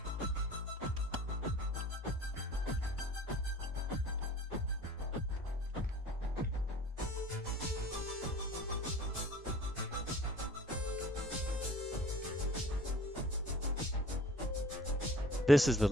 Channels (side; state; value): both; normal; correlation 0.48